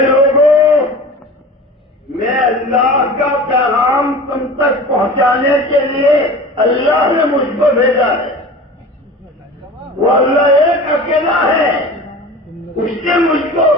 لوگوں، میں اللہ کا پیغام تم تک پہنچانے کے لیے اللہ نے مجھ کو بھیجا ہے۔ وہ اللہ ایک اکیلا ہے، اس نے مجھ کو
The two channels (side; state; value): both; normal; correlation 0.37